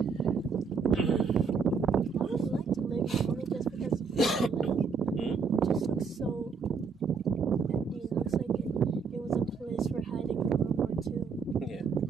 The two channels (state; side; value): quieter; left; 5.4 dB